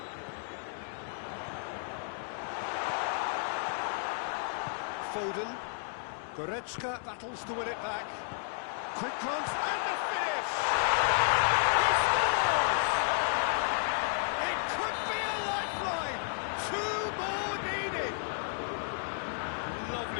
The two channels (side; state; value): right; silent; digital silence